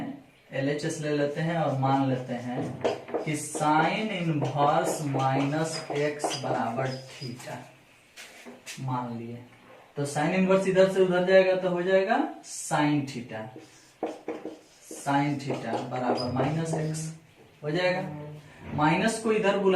LHS ले लेते हैं और मान लेते हैं कि साइन इनवर्स माइनस एक्स बराबर थीटा। मान लिए तो साइन इनवर्स इधर से उधर जाएगा तो हो जाएगा साइन थीटा। साइन थीटा बराबर माइनस एक्स हो जाएगा। माइनस को इधर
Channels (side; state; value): both; identical; correlation 1.00